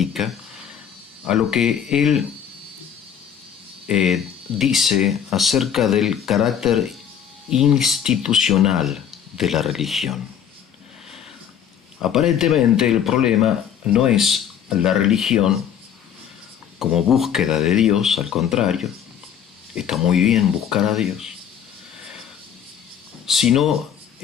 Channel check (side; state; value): right; quieter; 8.6 dB